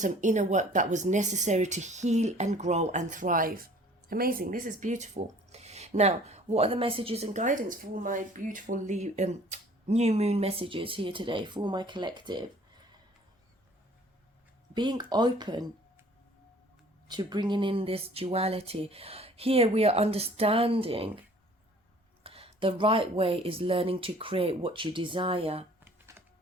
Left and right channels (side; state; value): both; normal; correlation 0.52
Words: inner work that was necessary to heal and grow and thrive. Amazing. This is beautiful. Now, what are the messages and guidance for my beautiful new moon messages here today for my collective? Being open to bringing in this duality. Here we are understanding the right way is learning to create what you desire.